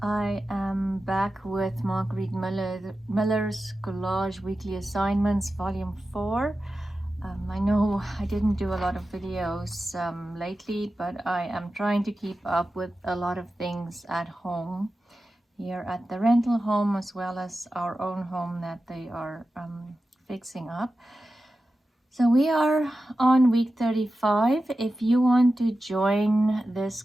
I am back with Marguerite Miller's Collage Weekly Assignments, Volume 4. I know I didn't do a lot of videos lately, but I am trying to keep up with a lot of things at home, here at the rental home, as well as our own home that they are fixing up. So we are on week 35. If you want to join this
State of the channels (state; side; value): normal; both; correlation 0.93